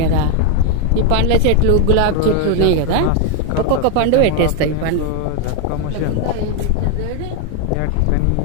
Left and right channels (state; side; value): different; both; correlation 0.01